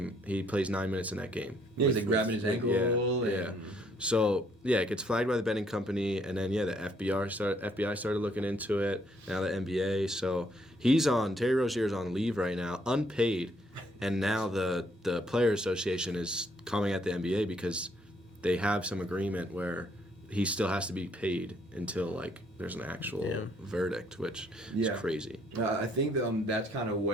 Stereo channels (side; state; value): both; normal; correlation 0.68